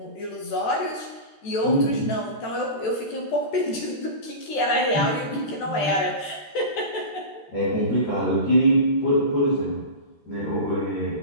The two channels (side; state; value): right; late; 13 ms